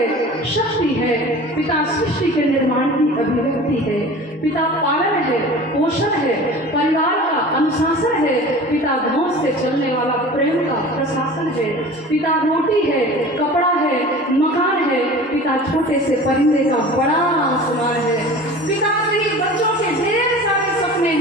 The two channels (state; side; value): normal; both; correlation 0.39